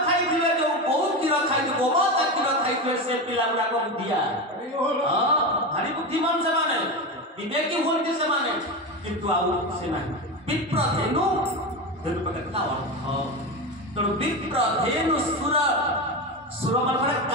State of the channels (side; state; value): both; normal; correlation 0.19